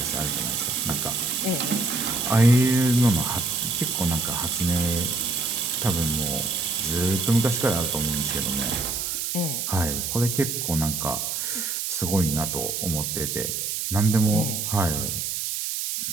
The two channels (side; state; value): right; noise; hiss, 2 dB below the sound